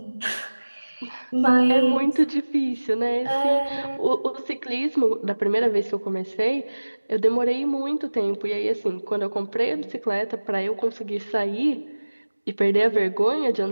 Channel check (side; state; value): both; inverted; correlation -1.00